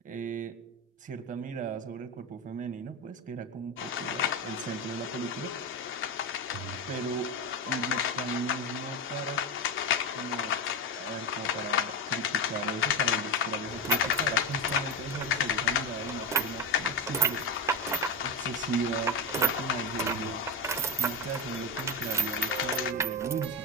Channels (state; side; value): normal; both; correlation 0.16